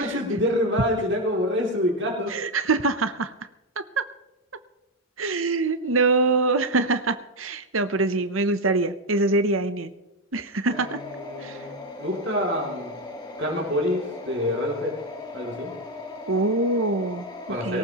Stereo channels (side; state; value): both; normal; correlation 0.09